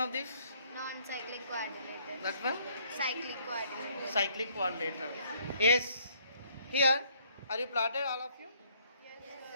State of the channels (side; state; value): both; inverted; correlation -0.65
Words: this? Non-cyclic quadrilateral. That one? Cyclic quadrilateral. Cyclic quadrilateral. Yes. Here, are you plotted, all of you? Yes,